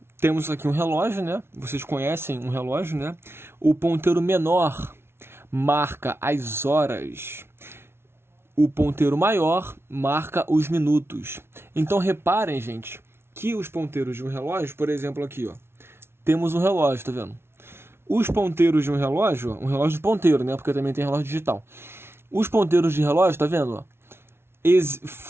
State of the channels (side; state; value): left; late; 0.12 ms